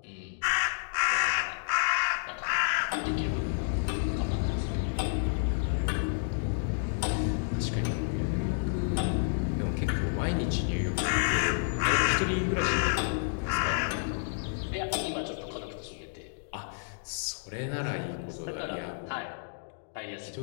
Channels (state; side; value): silent; right; digital silence